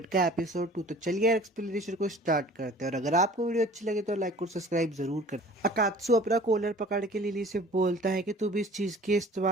का एपिसोड 2। तो चलिए यार एक्सप्लेनेशन को स्टार्ट करते हैं और अगर आपको वीडियो अच्छी लगे तो लाइक और सब्सक्राइब जरूर कर। अकात्सु अपना कॉलर पकड़ के लिली से बोलता है कि तुम इस चीज के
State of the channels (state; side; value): normal; both; correlation 0.48